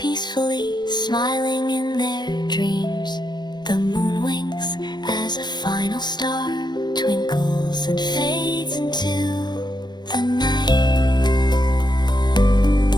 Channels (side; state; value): right; late; 0.21 ms